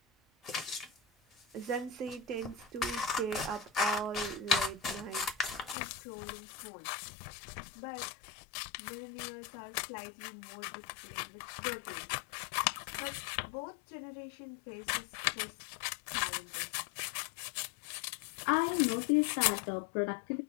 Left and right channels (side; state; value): right; drops out; at 5.8 s